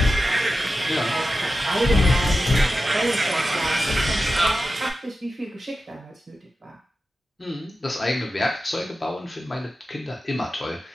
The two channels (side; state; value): both; normal; correlation 0.92